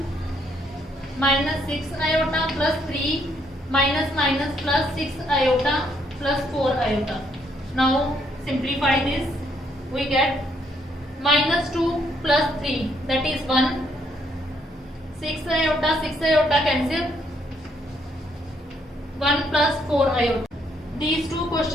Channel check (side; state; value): both; normal; correlation 0.71